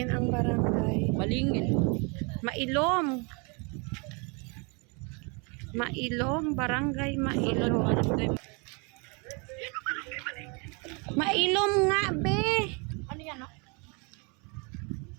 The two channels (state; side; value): quieter; left; 32.5 dB